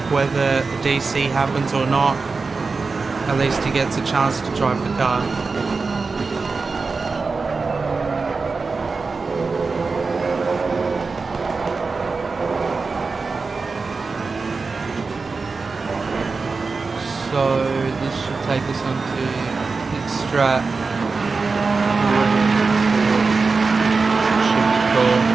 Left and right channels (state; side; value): quieter; left; 4.3 dB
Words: whether the DC happens or not, at least he gets a chance to drive the car. So this should take us onto pit strat. Should be cool.